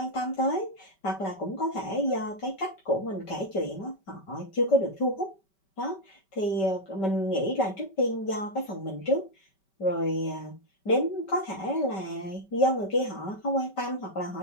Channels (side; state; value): right; late; 5.2 ms